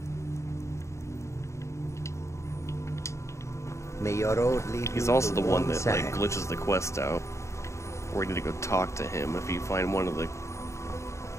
May your road lead He's also the one that like glitches the quest out, where you need to go talk to him if you find one of the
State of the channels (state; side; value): late; right; 0.14 ms